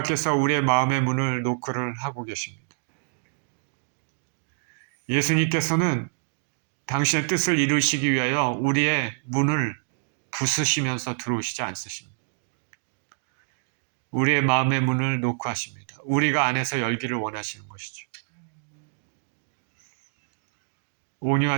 우리의 마음의 문을 노크를 하고 계십니다. 예수님께서는 당신의 뜻을 이루시기 위하여 우리의 문을 부수시면서 들어오시지 않으십니다. 우리의 마음의 문을 노크하십니다. 우리가 안에서 열기를 원하시는 것이죠.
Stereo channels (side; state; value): left; silent; digital silence